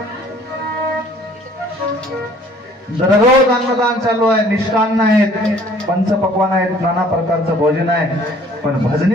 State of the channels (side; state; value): both; normal; correlation 0.55